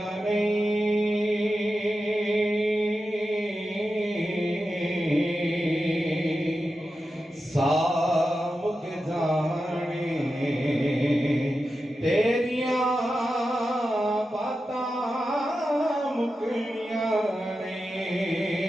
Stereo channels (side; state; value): both; normal; correlation 0.91